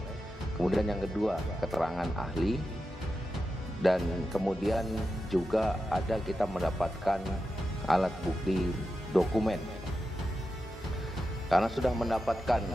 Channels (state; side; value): normal; both; correlation 0.90